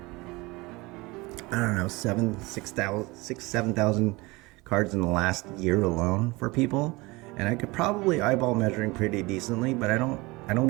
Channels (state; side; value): quieter; left; 23.3 dB